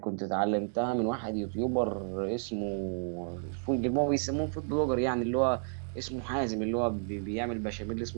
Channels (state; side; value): silent; left; 57 dB below the other